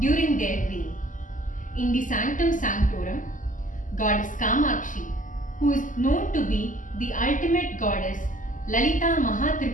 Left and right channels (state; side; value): late; right; 0.38 ms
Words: their reign. In the Sanctum Sanctorum, Goddess Kamakshi, who is known to be the ultimate goddess Lalita